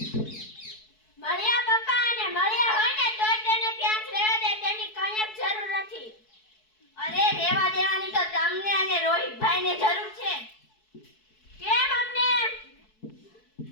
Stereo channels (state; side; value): late; right; 4.6 ms